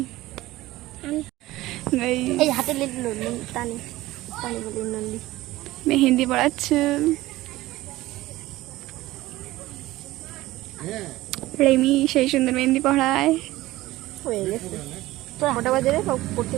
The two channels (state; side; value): quieter; left; 17.4 dB